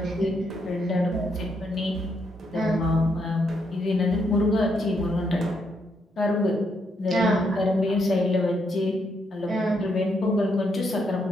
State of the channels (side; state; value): both; normal; correlation 0.77